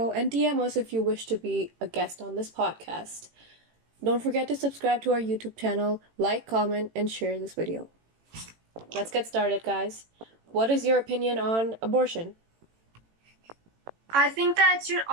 and DM us if you wish to be a guest on this podcast. Don't forget to subscribe to our YouTube channel, like, comment, and share this video. Let's get started, guys. What is your opinion on abortion? I think that it should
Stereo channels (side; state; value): left; late; 18 ms